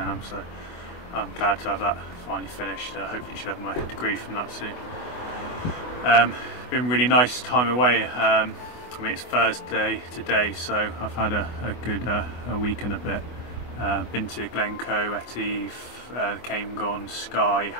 so I'm glad to have that finally finished. Hopefully should have my degree from that soon. Been a really nice time away. I mean, it's Thursday today, so I've had a good a week and a bit. Been to Glencoe, Etive, Camelon, Skye,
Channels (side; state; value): right; late; 24 ms